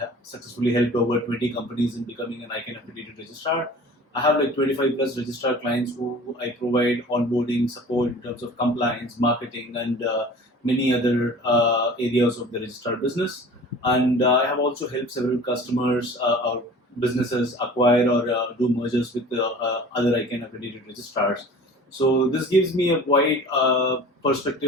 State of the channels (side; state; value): both; normal; correlation 0.43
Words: successfully helped over 20 companies in becoming an ICANN accredited registrar. I have like 25 plus registrar clients who I provide onboarding support in terms of compliance, marketing, and many other areas of the registrar business. And I have also helped several customers or businesses acquire or do mergers with other ICANN accredited registrars. So this gives me a wide